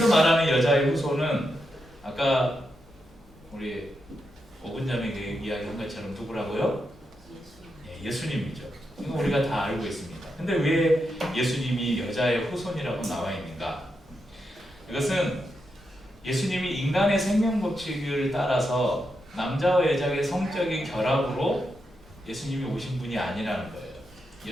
말하는 여자의 후손은 아까 우리 오근자매가 이야기한 것처럼 누구라고요? 예수님이죠. 이거 우리가 다 알고 있습니다. 근데 왜 예수님이 여자의 후손이라고 나와 있는가? 이것은 예수님이 인간의 생명 법칙을 따라서 남자와 여자의 성적인 결합으로 예수님이 오신 분이 아니라는 거예요.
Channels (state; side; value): normal; both; correlation 0.85